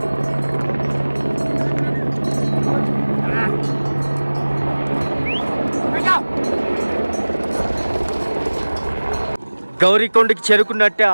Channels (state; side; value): inverted; both; correlation -1.00